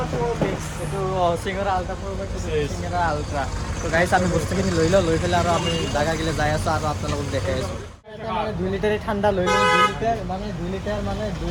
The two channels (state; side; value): identical; both; correlation 1.00